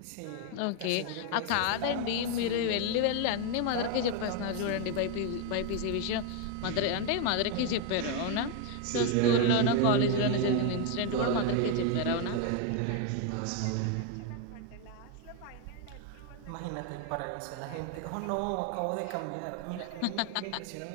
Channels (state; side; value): different; both; correlation 0.01